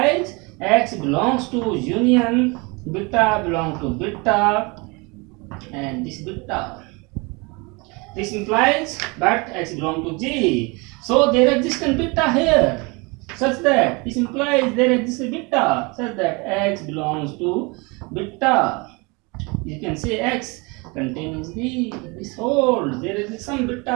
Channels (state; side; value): quieter; left; 28.0 dB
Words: X belongs to union beta belong to beta, and this beta. This implies but X belong to G. So there exists a beta here, such that this implies there exists a beta such that X belongs to beta. You can say X contains G. This holds. There is some